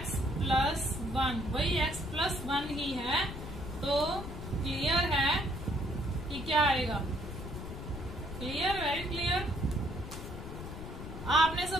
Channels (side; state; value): left; noise; rumble, 9 dB below the sound